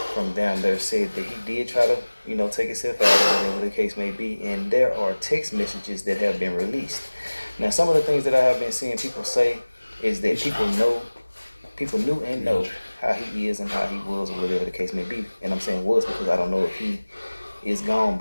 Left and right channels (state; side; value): inverted; both; correlation -1.00